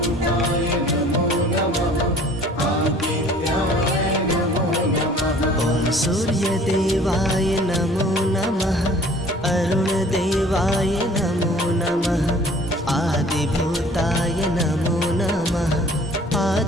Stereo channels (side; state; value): both; normal; correlation 0.51